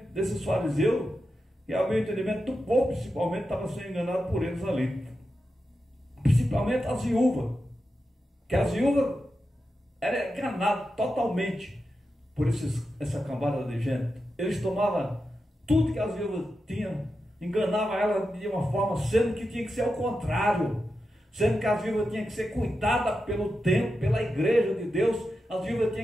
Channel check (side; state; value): both; normal; correlation 0.89